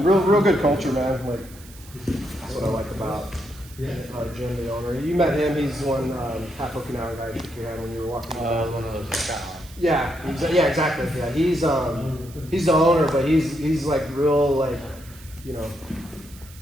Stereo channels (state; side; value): noise; right; hiss, 21 dB below the sound